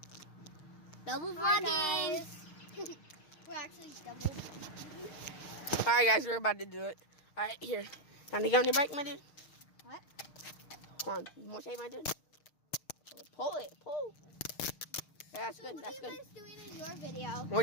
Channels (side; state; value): right; late; 6.5 ms